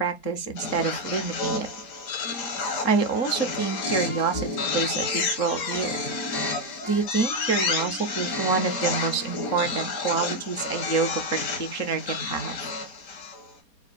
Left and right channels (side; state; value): right; late; 4.3 ms